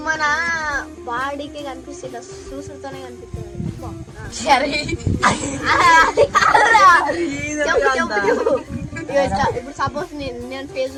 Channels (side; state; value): both; identical; correlation 1.00